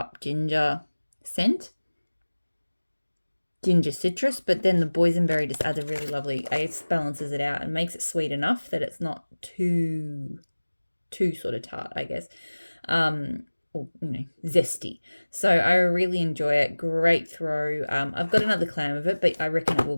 ginger scent. Ginger citrus, but then the boysenberry just adds a really lovely, it balances it out and makes it sweet enough that it's not too sort of tart, I guess. Or, zesty. So I really enjoy it. Great throw. I've got another clam of it, but I reckon it will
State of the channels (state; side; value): inverted; both; correlation -1.00